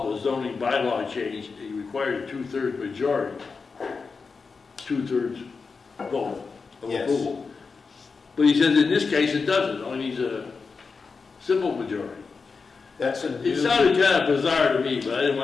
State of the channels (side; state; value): right; quieter; 4.8 dB